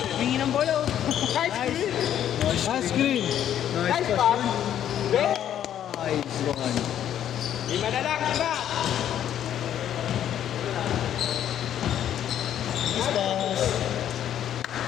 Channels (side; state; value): right; quieter; 10.5 dB